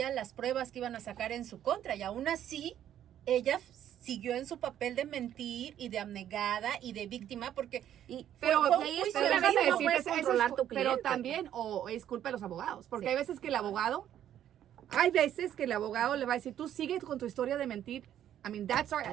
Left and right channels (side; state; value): left; quieter; 10.9 dB